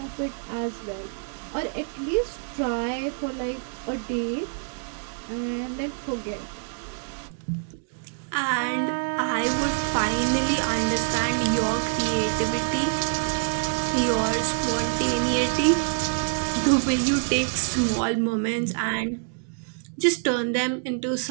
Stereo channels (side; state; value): left; silent; digital silence